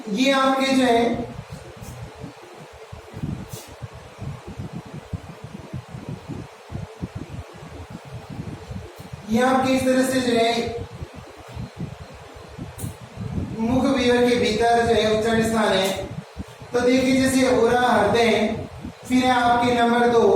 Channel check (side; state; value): both; identical; correlation 1.00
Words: ये आपके जो है ये आपके इस तरह से जो है मुख विवर के भीतर जो है उच्चारण स्थान है। तो देखिए जैसे उरा हृदय, फिर है आपके नंबर 2